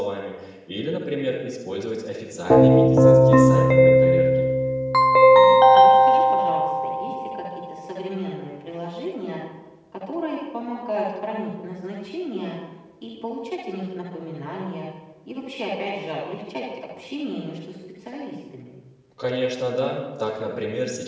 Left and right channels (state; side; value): identical; both; correlation 1.00